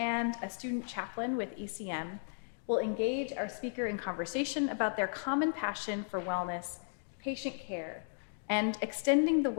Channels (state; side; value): silent; right; digital silence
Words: a student chaplain with ECM, will engage our speaker in conversation about their common passion for wellness, patient care, and extending the